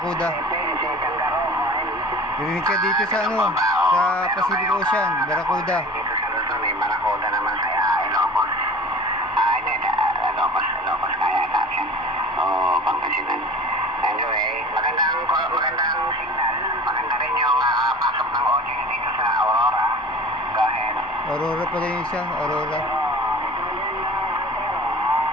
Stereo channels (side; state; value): both; normal; correlation 0.40